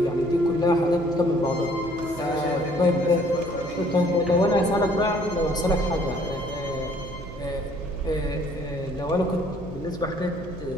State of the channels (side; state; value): right; noise; hum, 14 dB below the sound